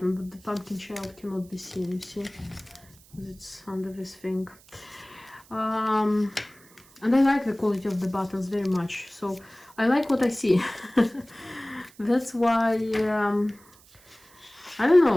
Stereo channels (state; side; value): noise; right; hiss, 26 dB below the sound